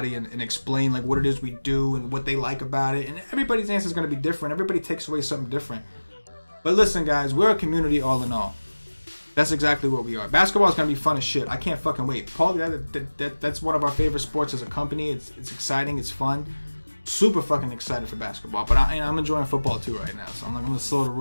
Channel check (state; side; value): inverted; both; correlation -1.00